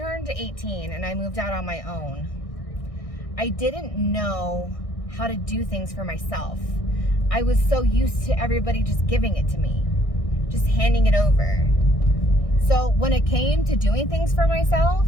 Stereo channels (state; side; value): late; right; 1.6 ms